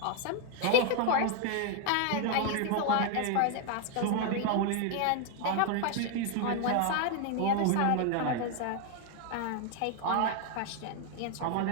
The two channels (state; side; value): different; both; correlation 0.00